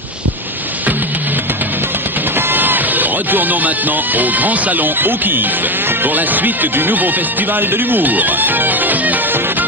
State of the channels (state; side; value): normal; both; correlation 0.15